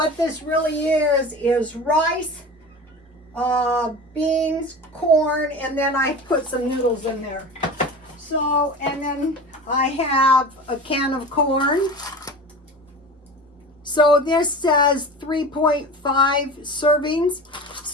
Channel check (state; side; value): normal; both; correlation 0.33